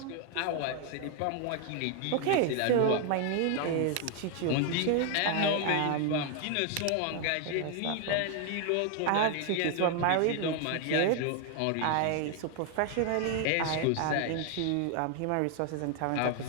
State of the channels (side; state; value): both; different; correlation 0.00